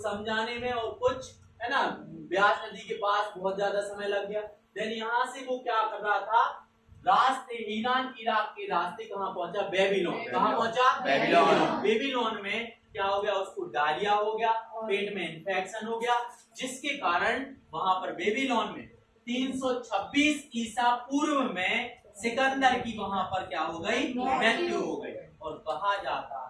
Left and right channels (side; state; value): both; identical; correlation 1.00